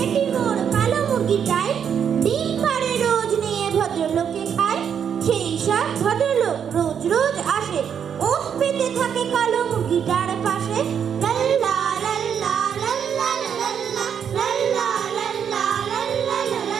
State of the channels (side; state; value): left; quieter; 7.9 dB